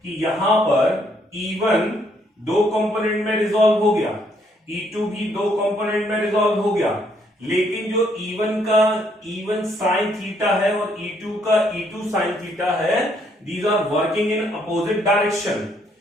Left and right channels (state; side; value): normal; both; correlation 0.70